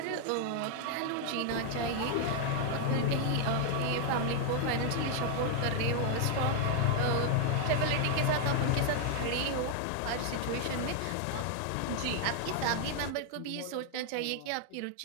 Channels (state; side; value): different; both; correlation 0.00